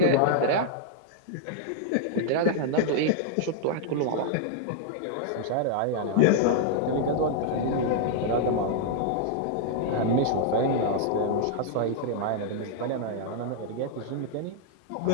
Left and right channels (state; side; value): different; both; correlation -0.01